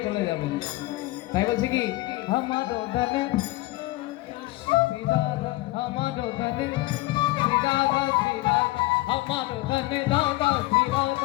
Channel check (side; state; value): right; quieter; 19.8 dB